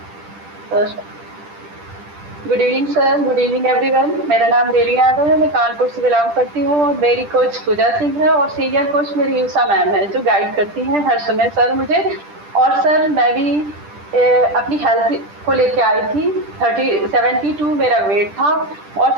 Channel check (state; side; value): late; left; 10 ms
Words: Good evening sir, good evening everyone. मेरा नाम रेली यादव है, मैं कानपुर से बिलोंग करती हूँ, और मेरी कोच पूजा सिंह है, और सीनियर कोच मेरी यूसा मैम है जो गाइड करती हैं हर समय सर मुझे। और सर मैं भी अपनी हेल्थ को लेके आई थी। 72 मेरा वेट था, और